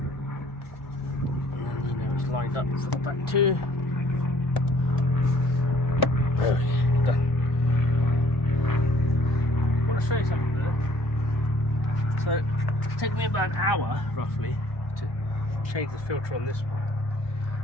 then you know it's lined up for the back too. There we go, done. I want to show you something here. So it's taken me about an hour roughly to change the filter on this one.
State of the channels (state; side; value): late; right; 1.1 ms